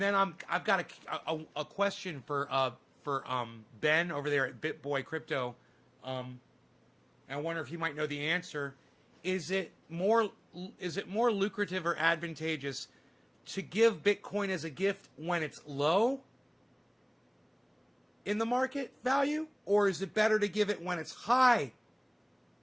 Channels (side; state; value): both; identical; correlation 1.00